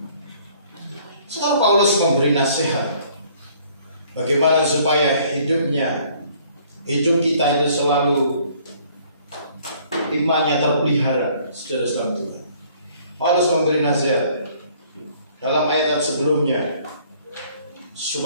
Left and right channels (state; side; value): inverted; both; correlation -0.59